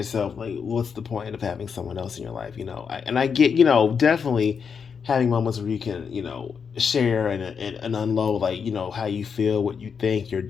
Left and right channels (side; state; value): right; quieter; 6.3 dB